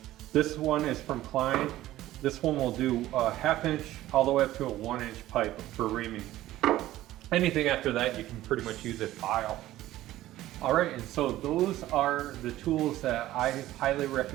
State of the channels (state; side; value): quieter; left; 15.0 dB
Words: This one is from Klein. This one will do a 1/2 inch all the way up to a 1 inch pipe for reaming. Anything after that, you can pretty much use a file. All right, and so those are the tools that I highly